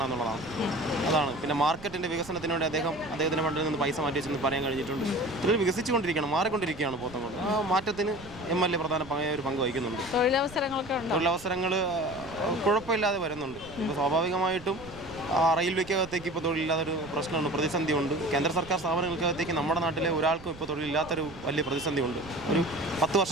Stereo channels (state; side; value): noise; right; rumble, 17 dB below the sound